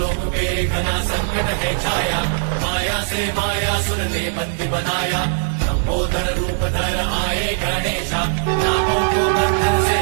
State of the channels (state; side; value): silent; left; 66 dB below the other